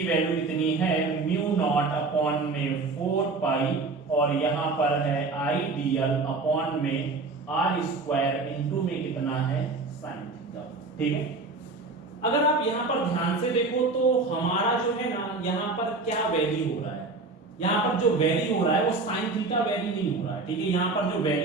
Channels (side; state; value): left; quieter; 3.7 dB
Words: वैल्यू कितनी है म्यू नॉट अपॉन में 4 पाई, और यहाँ पर है आइडियल अपॉन में r स्क्वायर इनटू में कितना है sin थीटा। ठीक है, अगर आप यहाँ पर ध्यान से देखो तो हमारा जो है ना यहाँ पर क्या वैल्यू हो रहा है, यहाँ पर जो वैल्यू हो रहा है वो sin थीटा वैल्यू नहीं हो रहा है। ठीक है, यहाँ पर जो